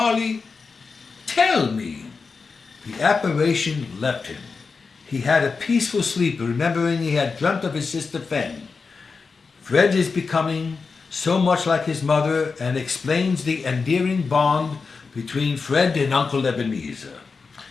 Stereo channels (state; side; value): quieter; right; 4.7 dB